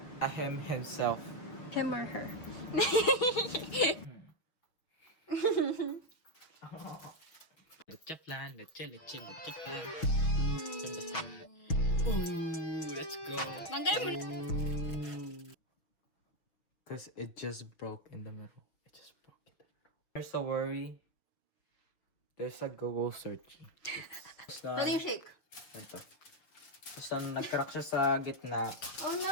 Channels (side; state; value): right; late; 6.2 ms